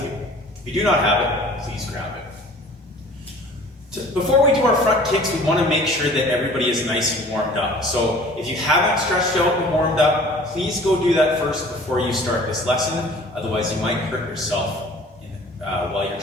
you. If you do not have it, please grab it. Before we do our front kicks, we want to make sure that everybody is nice and warmed up. So if you haven't stretched out and warmed up, please go do that first before you start this lesson. Otherwise, you might hurt yourself while you're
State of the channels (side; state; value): both; normal; correlation 0.48